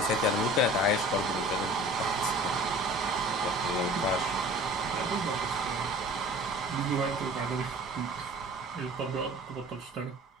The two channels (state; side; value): normal; both; correlation 0.44